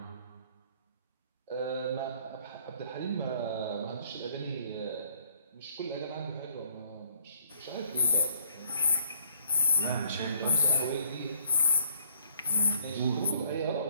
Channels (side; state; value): both; inverted; correlation -0.65